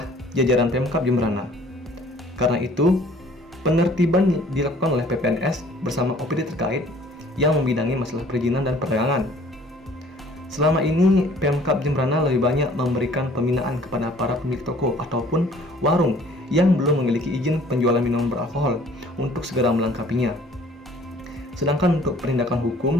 jajaran Pemkab Jemberana. Karena itu, penertiban dilakukan oleh PPNS bersama OPD terkait yang membidangi masalah perizinan dan perdagangan. Selama ini, Pemkab Jemberana lebih banyak memberikan pembinaan kepada para pemilik toko ataupun warung yang belum memiliki izin penjualan minuman beralkohol untuk segera melengkapinya. Sedangkan untuk penindakan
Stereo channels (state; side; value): normal; both; correlation 0.54